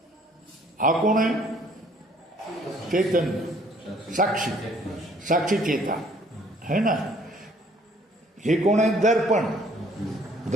हा कोण आहे? चैतन्य, साक्षी, साक्षी चेता, है ना? हे कोण आहे? दर्पण.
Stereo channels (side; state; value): both; normal; correlation 0.59